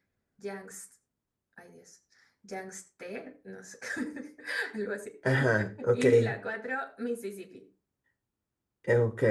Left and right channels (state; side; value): identical; both; correlation 1.00